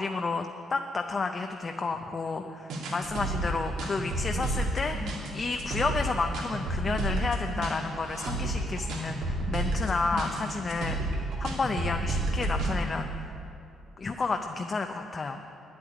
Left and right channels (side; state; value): both; normal; correlation 0.75